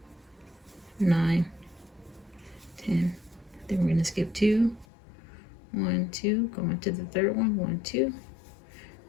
9, 10. Then we're going to skip 2, 1, 2, go into the third one, 1, 2,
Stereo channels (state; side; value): drops out; right; at 4.9 s